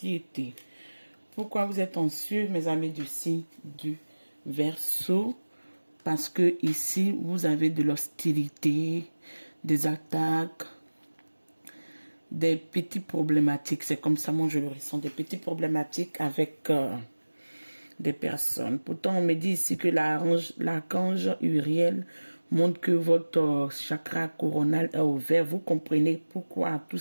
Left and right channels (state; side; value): inverted; both; correlation -1.00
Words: Pourquoi vous êtes anxieux, mes amis du signe du Verseau? Parce que ici, vous avez de l'hostilité, des attaques, des petites problématiques. C'est comme ça, moi, je le ressens. Des petites problématiques avec des personnes. Pourtant, on me dit ici que l'archange Uriel montre que votre chakra coronal est ouvert. Vous comprenez pourquoi tous